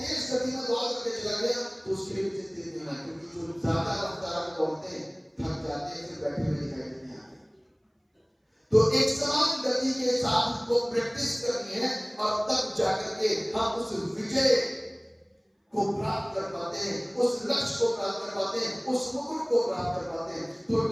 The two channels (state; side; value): identical; both; correlation 1.00